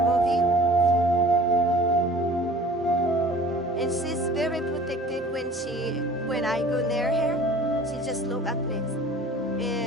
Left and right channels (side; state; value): both; normal; correlation 0.46